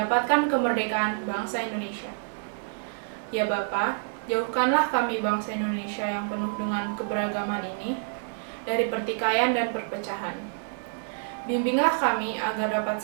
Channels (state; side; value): silent; left; digital silence